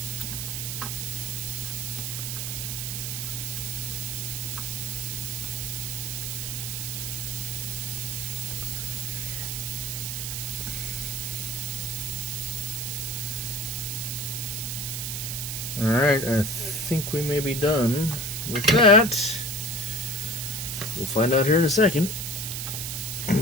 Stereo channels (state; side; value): noise; right; hiss, 3 dB below the sound